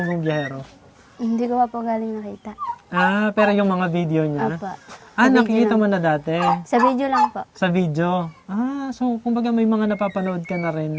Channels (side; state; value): both; identical; correlation 1.00